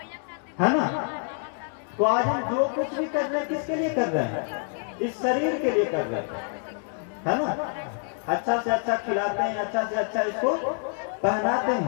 है ना। तो आज हम जो कुछ भी कर रहे हैं किसके लिए कर रहे हैं? इस शरीर के लिए कर रहे हैं, है ना। अच्छा से अच्छा खिलाते हैं, अच्छा से अच्छा इसको पहनाते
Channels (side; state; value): right; silent; 60 dB below the other